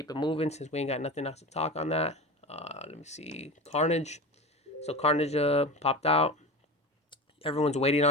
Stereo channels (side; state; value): both; normal; correlation 0.28